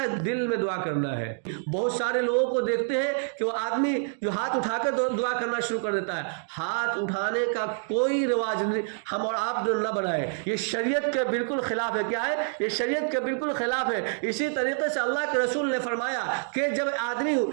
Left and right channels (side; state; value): left; silent; digital silence